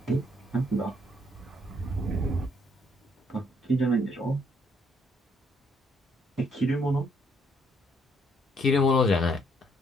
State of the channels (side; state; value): both; normal; correlation 0.69